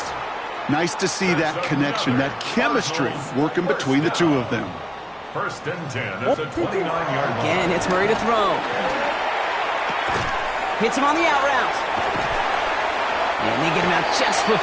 Nice to see that connection, that chemistry working between the two of them. First and 10 at the 29-yard line. Again, it's Murray to throw. Hits him on the out route. And they get him out just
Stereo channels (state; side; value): identical; both; correlation 1.00